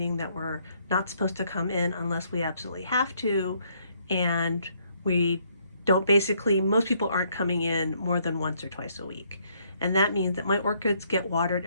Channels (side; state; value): both; inverted; correlation -0.69